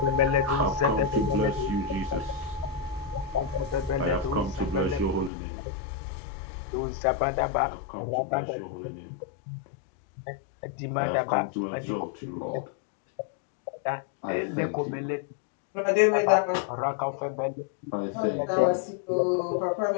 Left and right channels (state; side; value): drops out; right; at 5.3 s